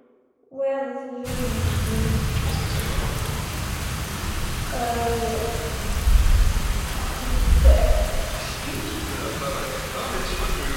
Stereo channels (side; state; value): both; identical; correlation 1.00